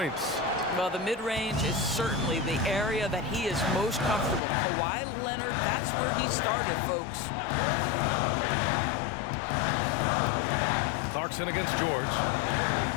Well, the mid-range is certainly the area that he is most comfortable. Kawhi Leonard, that's where he started, folks. Clarkson against George.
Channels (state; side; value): drops out; right; at 4.4 s